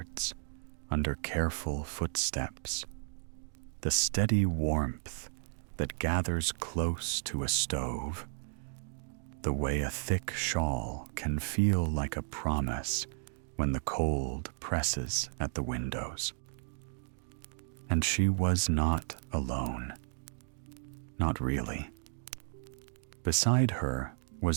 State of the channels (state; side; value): silent; left; digital silence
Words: under careful footsteps, the steady warmth that gathers close to a stove, the way a thick shawl can feel like a promise when the cold presses at the windows. And she was not alone. Not really. Beside her